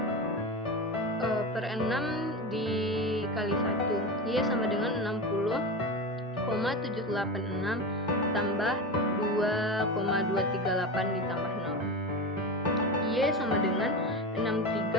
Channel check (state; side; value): normal; both; correlation 0.23